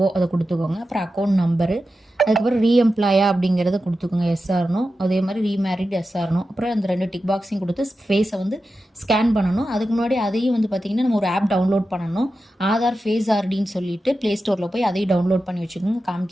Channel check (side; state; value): both; normal; correlation 0.91